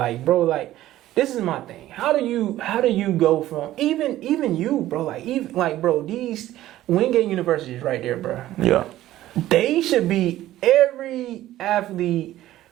bro, like this is my thing. How do you go from even you, bro? Like bro, these Wingate University is right there, bro. Yeah. They should be every athlete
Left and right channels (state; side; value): quieter; left; 14.4 dB